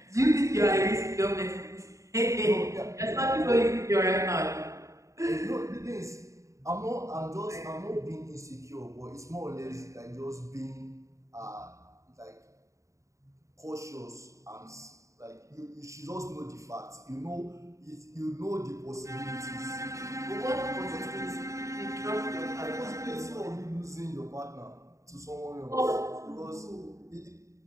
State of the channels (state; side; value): late; left; 0.15 ms